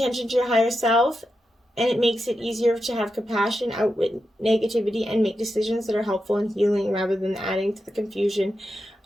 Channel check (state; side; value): normal; both; correlation 0.88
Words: to your higher self, and it makes it easier to have compassion, outwit negativity, and make decisions that are helpful and healing rather than adding to the confusion